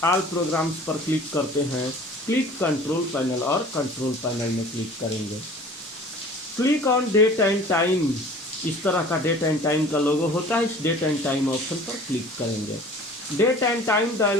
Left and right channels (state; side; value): normal; both; correlation 0.45